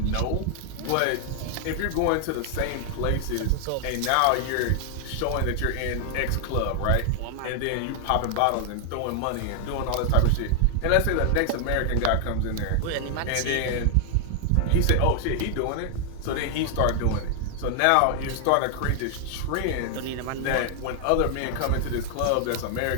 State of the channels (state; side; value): different; both; correlation 0.00